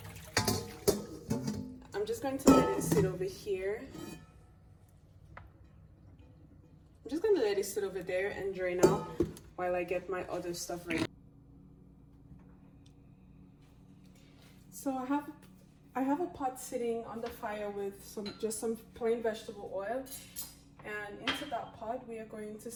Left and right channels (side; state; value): both; identical; correlation 1.00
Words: I'm just going to let it sit over here. I'm just gonna let it sit over there and drain out while I get my other stuff ready. So I have a pot sitting on the fire with some plain vegetable oil, and into that pot we are going to